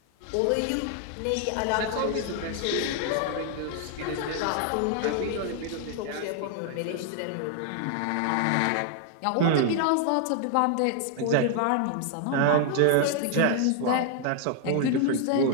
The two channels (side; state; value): both; different; correlation 0.00